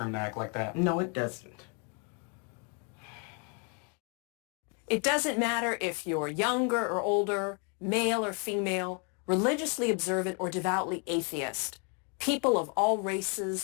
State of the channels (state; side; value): quieter; right; 37.6 dB